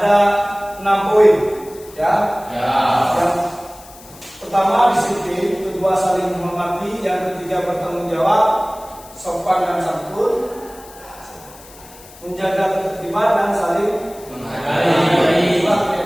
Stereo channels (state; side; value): noise; left; hiss, 21 dB below the sound